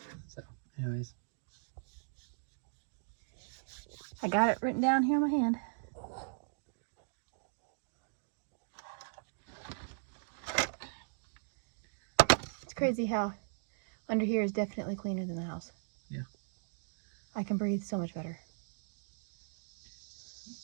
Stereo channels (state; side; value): silent; left; digital silence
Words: So, anyways. I got it written down here in my hand. It's crazy how under here is definitely cleaner than the house. Yeah. I can breathe so much better.